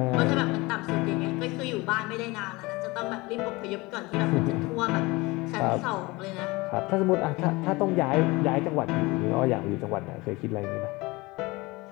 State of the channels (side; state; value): right; quieter; 23.1 dB